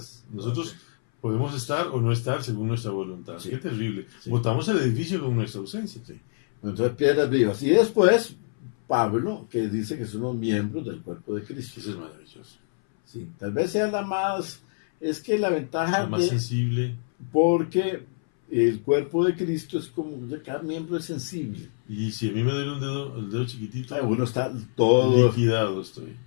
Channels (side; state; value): right; silent; 61 dB below the other